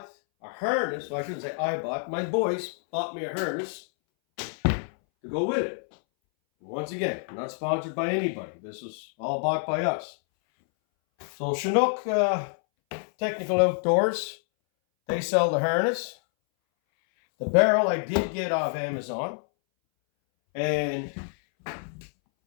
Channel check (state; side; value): silent; right; 60 dB below the other